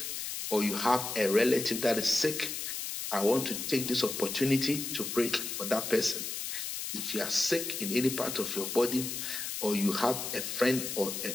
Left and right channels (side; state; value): left; noise; hiss, 5 dB below the sound